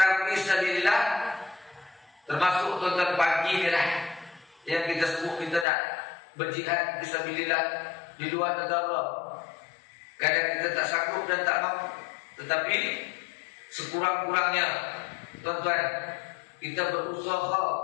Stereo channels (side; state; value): right; drops out; at 5.7 s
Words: fi sabilillah, termasuk tuan-tuan pagi ni lah yang kita sebut kita nak berjihad fi sabilillah di luar negara. Kadang kita tak sanggup dan tak mampu, tetapi sekurang-kurangnya tuan-tuan kita berusaha